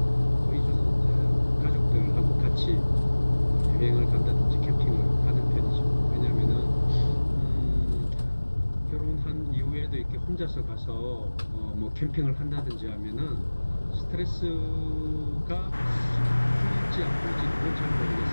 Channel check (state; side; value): inverted; both; correlation -1.00